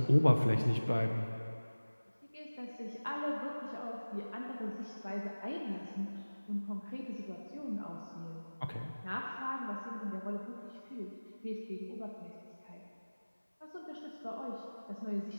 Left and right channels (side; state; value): both; inverted; correlation -1.00